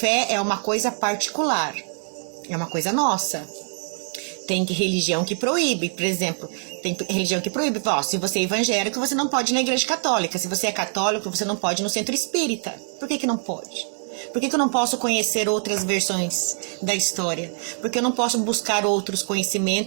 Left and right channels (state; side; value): silent; left; 62 dB below the other